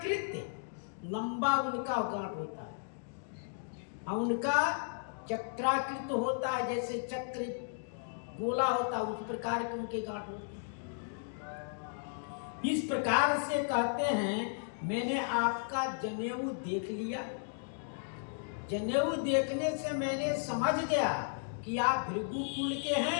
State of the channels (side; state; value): right; silent; digital silence